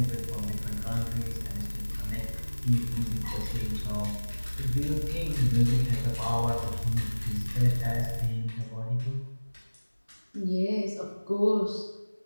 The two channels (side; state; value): both; inverted; correlation -1.00